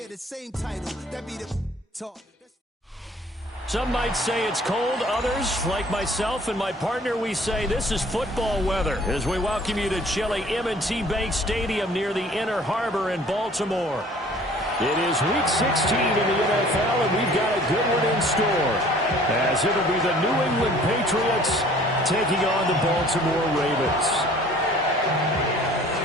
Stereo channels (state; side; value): normal; both; correlation 0.52